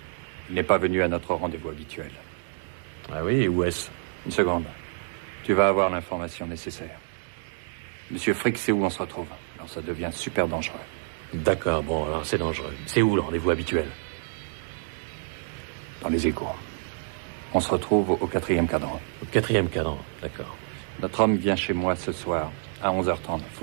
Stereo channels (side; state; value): left; silent; digital silence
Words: Il n'est pas venu à notre rendez-vous habituel. Ah oui, et où est-ce? Une seconde. Tu vas avoir l'information nécessaire. Monsieur Frick sait où on se retrouve. Alors ça devient super dangereux. D'accord, bon, alors c'est dangereux. C'est où le rendez-vous habituel? Dans les égouts. On se retrouve au 4e cadran. Au 4e cadran, d'accord. Notre homme vient chez moi ce soir, à 11h30.